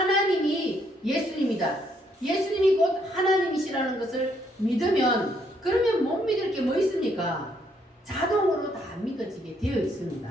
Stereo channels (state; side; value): normal; both; correlation 0.71